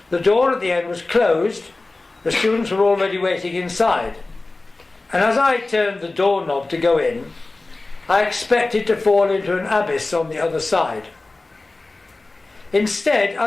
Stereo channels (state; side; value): quieter; right; 3.2 dB